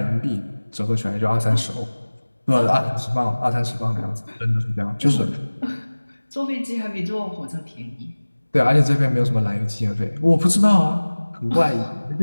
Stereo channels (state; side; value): inverted; both; correlation -1.00